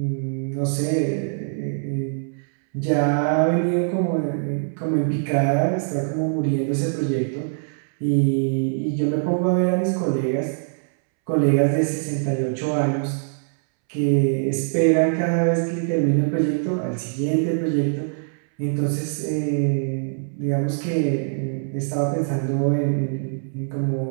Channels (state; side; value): silent; left; 63 dB below the other